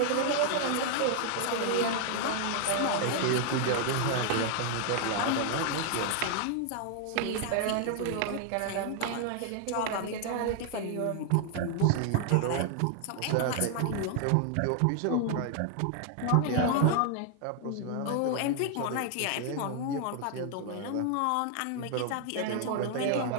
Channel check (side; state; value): both; different; correlation 0.00